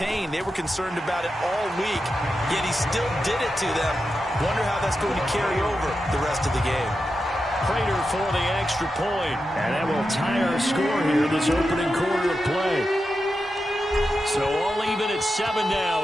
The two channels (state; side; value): normal; both; correlation 0.89